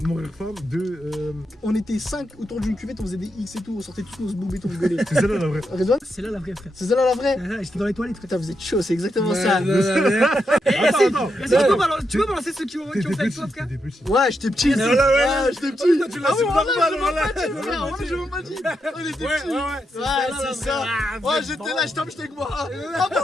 mourir femme. 2, On était 5 autour d'une cuvette, on faisait des X et tout, on sortait tous nos boubés, on rigolait. c'est celle-là la vraie. Redouane, C'est là la vraie, frère. c'est ça là la vraie? J'étais dans les toilettes. Putain, vous êtes chaud, c'est exactement ça. Attends. Tu peux balancer ceux qui ont fait avec toi, frère? T'étais petit. Ouais, j'étais petit. Ouais, J'étais petit. Tu l'as su normal, voilà. Je m'en pas dit. On était Ouais, petits. ouais, Ouais, c'est ça. Ouais, j'étais là, j'étais avec moi. Ah bon,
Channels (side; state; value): both; normal; correlation 0.83